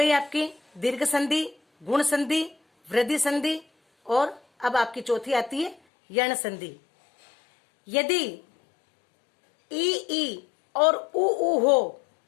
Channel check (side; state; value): right; drops out; at 5.8 s